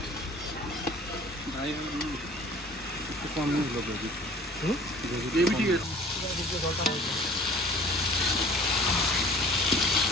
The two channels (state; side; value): normal; both; correlation 0.49